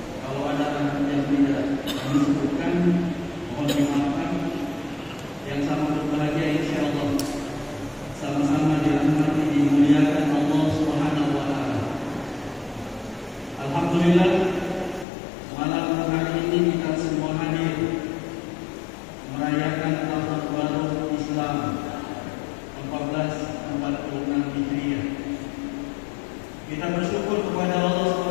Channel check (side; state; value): right; drops out; at 15.1 s